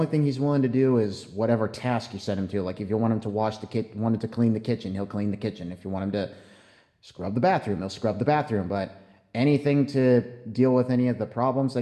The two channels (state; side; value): identical; both; correlation 1.00